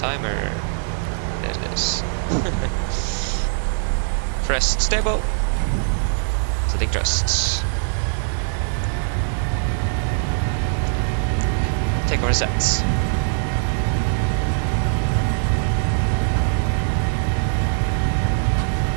There it is. Press stable. Setting thrust. Take over sets.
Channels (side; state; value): left; silent; digital silence